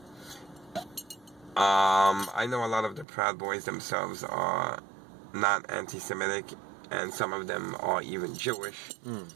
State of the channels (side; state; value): left; drops out; at 3.1 s